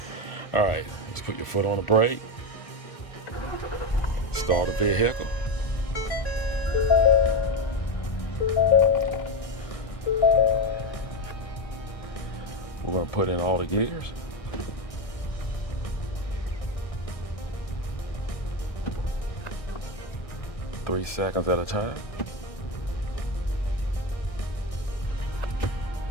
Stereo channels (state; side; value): late; right; 1.6 ms